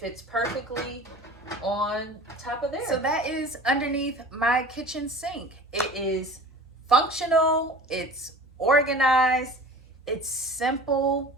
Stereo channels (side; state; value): both; normal; correlation 0.41